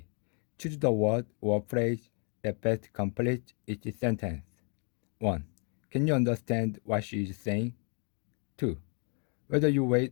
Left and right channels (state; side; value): quieter; right; 37.8 dB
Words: Choose the word or phrase that best completes each sentence. 1. Can you understand what she is saying? 2. Whether you wait